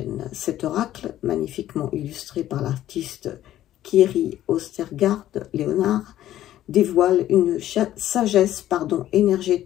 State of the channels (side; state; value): right; quieter; 12.9 dB